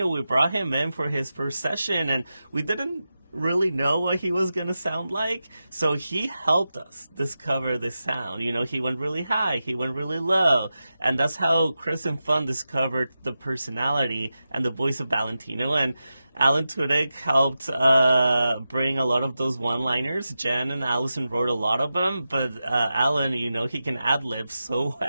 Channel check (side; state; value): both; inverted; correlation -0.92